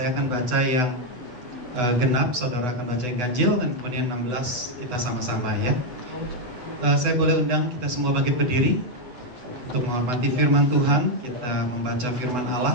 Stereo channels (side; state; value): left; late; 8.1 ms